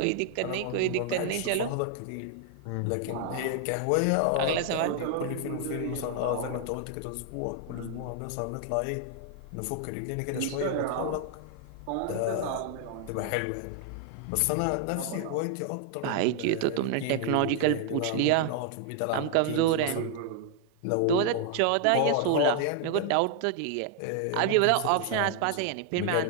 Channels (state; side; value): different; both; correlation 0.00